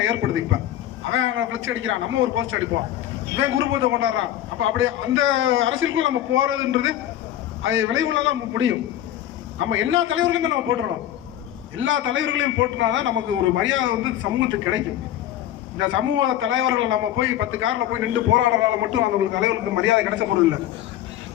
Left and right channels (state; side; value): quieter; right; 12.3 dB